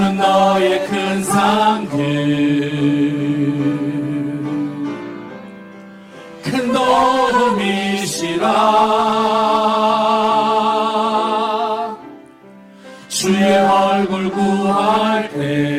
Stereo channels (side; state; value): both; identical; correlation 1.00